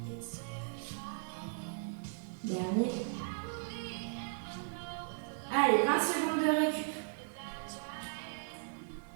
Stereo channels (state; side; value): silent; left; 53 dB below the other